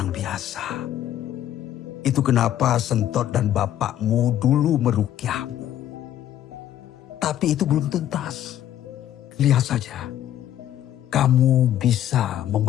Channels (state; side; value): quieter; right; 11.7 dB